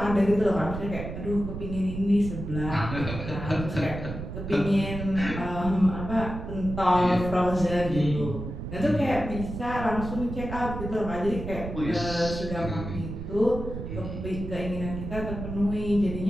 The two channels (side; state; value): right; noise; rumble, 7 dB below the sound